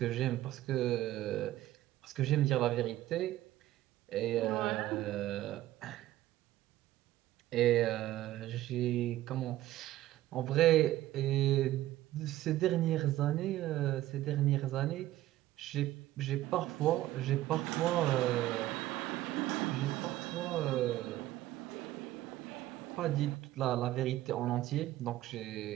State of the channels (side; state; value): left; quieter; 15.1 dB